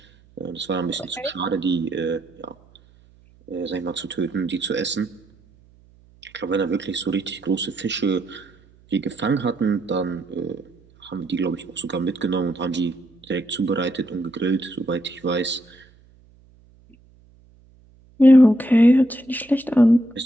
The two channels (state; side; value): noise; right; hum, 29 dB below the sound